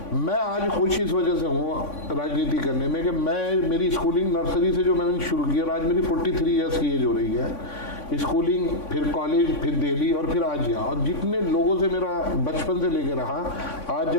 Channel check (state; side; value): late; right; 3.6 ms